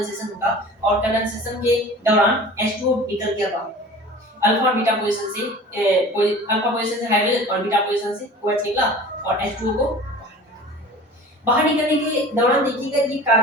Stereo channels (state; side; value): normal; both; correlation 0.41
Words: होगा, और कंडेंसेशन के दौरान H2O निकल गया बाहर, अल्फा और बीटा पोजीशन से अल्फा पोजीशन से हाइड्रोजन और बीटा पोजीशन से OH निकला, और H2O को बाहर निकलने के दौरान देखिएगा ये